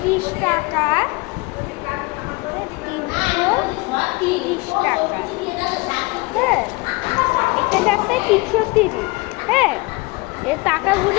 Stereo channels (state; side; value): quieter; right; 25.2 dB